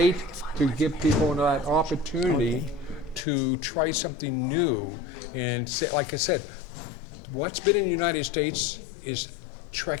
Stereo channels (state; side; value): drops out; right; at 3.2 s